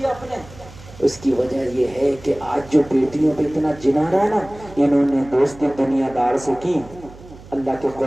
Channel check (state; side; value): noise; right; hum, 19 dB below the sound